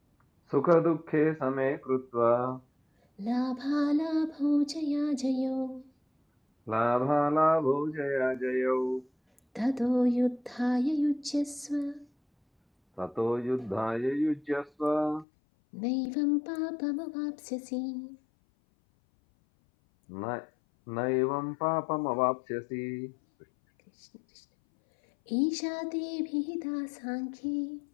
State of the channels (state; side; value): drops out; right; at 15.2 s